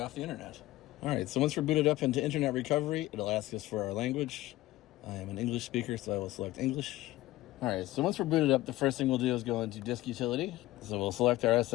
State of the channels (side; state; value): right; quieter; 17.1 dB